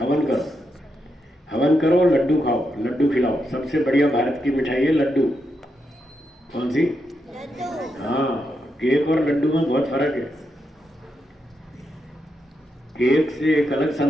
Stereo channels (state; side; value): normal; both; correlation 0.83